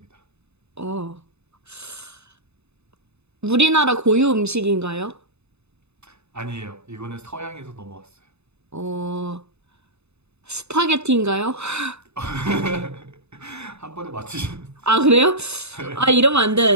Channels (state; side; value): late; left; 0.80 ms